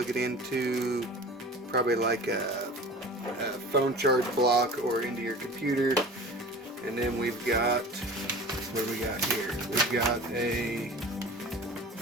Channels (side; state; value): both; normal; correlation 0.39